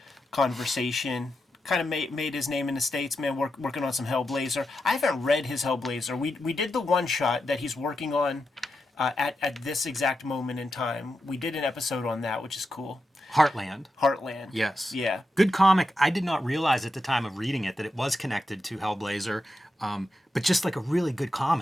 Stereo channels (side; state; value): both; normal; correlation 0.88